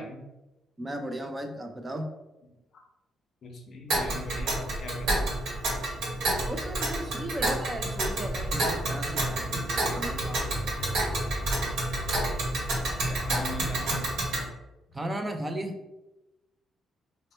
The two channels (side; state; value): both; normal; correlation 0.74